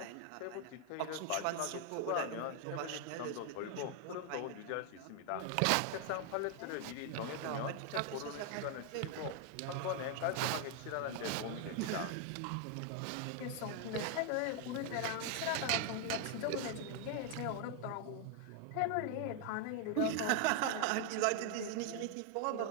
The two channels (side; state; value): both; different; correlation 0.00